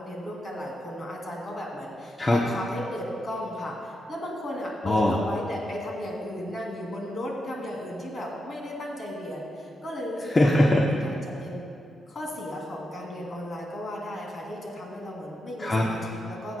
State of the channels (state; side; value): normal; both; correlation 0.87